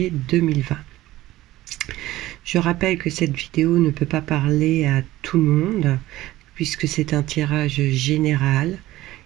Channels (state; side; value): quieter; left; 16.4 dB